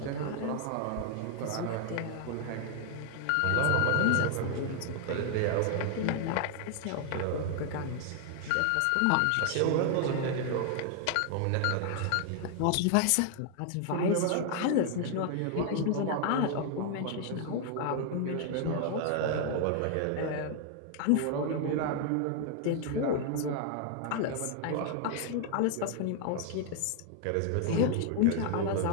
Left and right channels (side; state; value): both; different; correlation 0.00